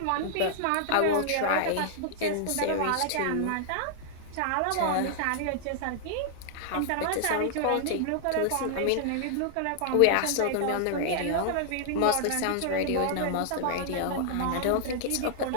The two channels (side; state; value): both; different; correlation -0.01